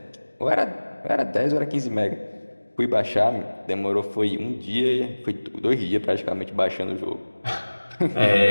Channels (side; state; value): both; inverted; correlation -1.00